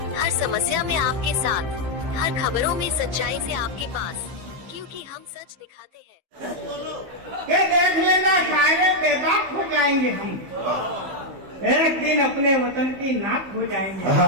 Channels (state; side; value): late; left; 15 ms